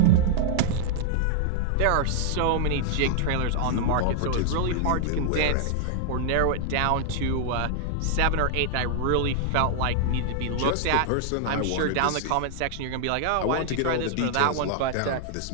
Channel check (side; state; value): both; different; correlation 0.00